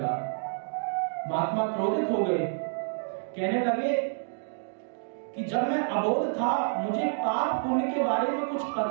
महात्मा क्रोधित हो गए, कहने लगे कि जब मैं अबोध था, मुझे पाप पुण्य के बारे में कुछ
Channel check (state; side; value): silent; left; digital silence